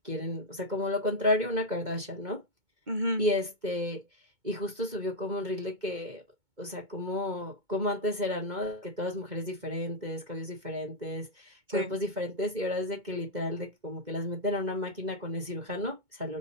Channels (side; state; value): left; late; 2.2 ms